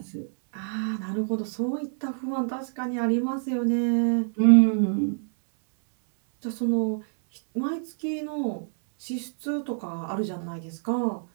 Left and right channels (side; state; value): left; silent; 61 dB below the other